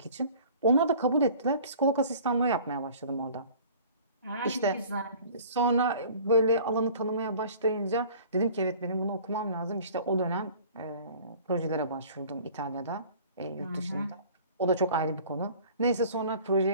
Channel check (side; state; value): both; inverted; correlation -0.48